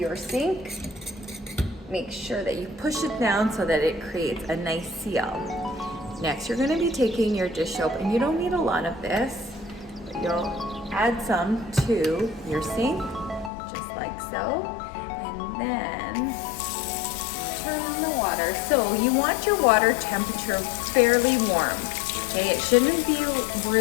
sink. Make sure that you push it down so that it creates a nice seal. Next, you're gonna be taking your dish soap, and you don't need a lot of this, but you'll add some to your sink, just like so, and then turn on the water. So you want your water temperature fairly warm, okay? It shouldn't be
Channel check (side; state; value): right; drops out; at 13.5 s